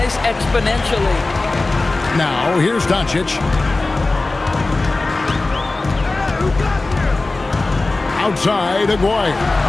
exponentially. Now, here's Doncic. Outside, Aguirre.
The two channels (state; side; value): quieter; right; 3.2 dB